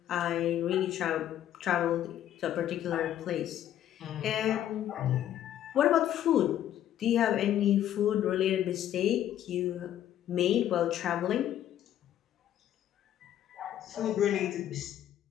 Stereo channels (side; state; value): right; quieter; 11.4 dB